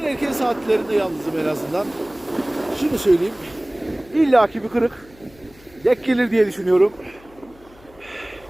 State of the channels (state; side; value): noise; left; hum, 25 dB below the sound